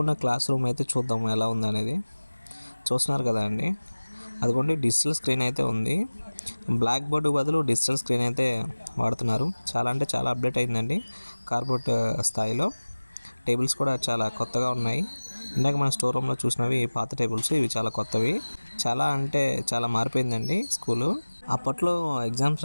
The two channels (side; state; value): both; inverted; correlation -1.00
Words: క్లాస్ రూమ్ అయితే చూద్దాం ఎలా ఉందనేది. చూస్తున్నారు కదా అండి, అదిగోండి డిజిటల్ స్క్రీన్ అయితే ఉంది. బ్లాక్ బోర్డు బదులు డిజిటల్ స్క్రీన్ అయితే వాడుతున్నారు. చాలా అంటే చాలా అప్డేట్ అయిందండి కార్పొరేట్ స్థాయిలో. టేబుల్స్ కూడా చాలా కొత్తగా ఉన్నాయి. ఇందాక మన స్టోర్ రూమ్లో చూసినవి పాత టేబుల్స్, ఇవి చాలా కొత్తవి. చాలా అంటే చాలా మారిపోయిందండి స్కూలు. అప్పట్లో ఎగ్జామ్స్